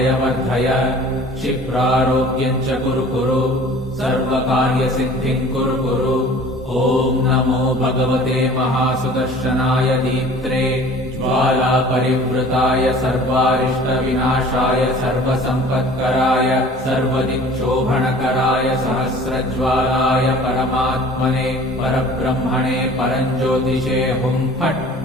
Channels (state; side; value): normal; both; correlation 0.47